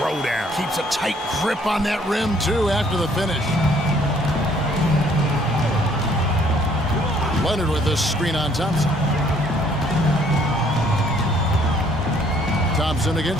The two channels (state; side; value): normal; both; correlation 0.62